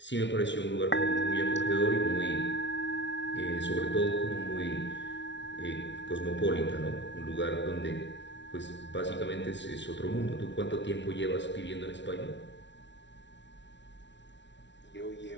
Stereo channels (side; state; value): right; late; 0.52 ms